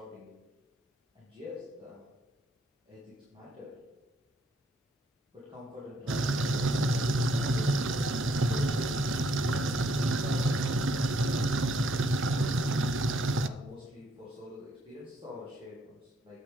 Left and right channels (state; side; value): normal; both; correlation 0.70